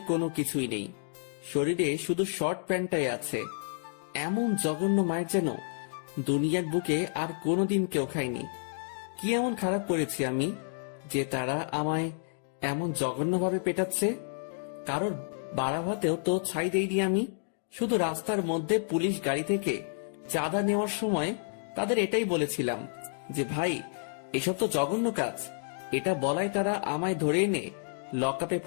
কোনো কিছুই নেই, শরীরে শুধু শর্ট প্যান্টটাই আছে। এমন জঘন্য মায়ের যেন দুনিয়ার বুকে আর কোনোদিন কেউ খায়নি। কি এমন খারাপ করেছি আমি যে তারা আমায় এমন জঘন্যভাবে পেটাচ্ছে? কারোর বাড়া ভাতেও তো ছাই দেইনি আমি। শুধু রাস্তার মধ্যে পুলিশ গাড়ি থেকে চাঁদা নেওয়ার সময় তাদের এটাই বলেছিলাম যে ভাই, এসব তো জঘন্য কাজ। এটা বলাই তারা আমায় ধরে এনে লকআপে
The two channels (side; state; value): right; silent; digital silence